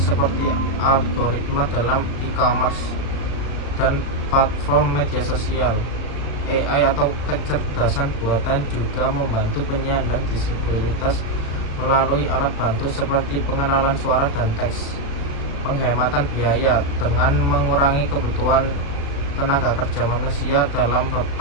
algoritma dalam e-commerce dan platform media sosial. AI atau kecerdasan buatan juga membantu penyandang disabilitas melalui alat bantu seperti pengenalan suara dan teks. Penghematan biaya: dengan mengurangi kebutuhan tenaga kerja manusia dalam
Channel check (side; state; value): right; late; 36 ms